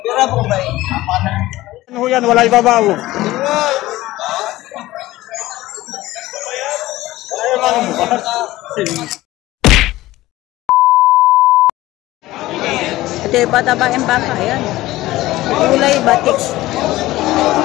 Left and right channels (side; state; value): right; quieter; 17.2 dB